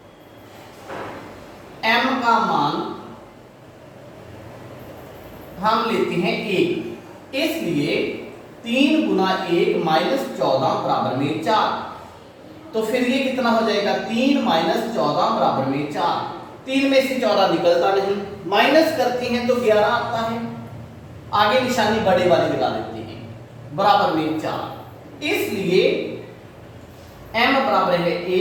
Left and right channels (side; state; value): both; identical; correlation 1.00